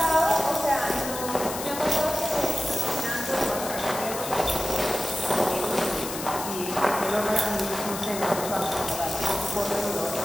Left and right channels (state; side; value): noise; left; hiss, 8 dB below the sound